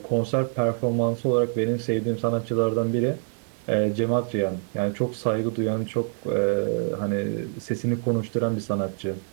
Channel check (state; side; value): silent; left; 59 dB below the other